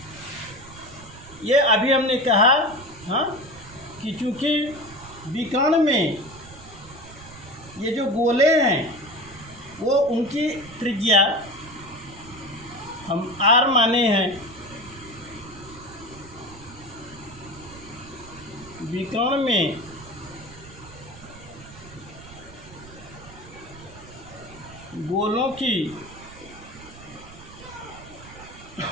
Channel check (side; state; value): right; noise; rumble, 18 dB below the sound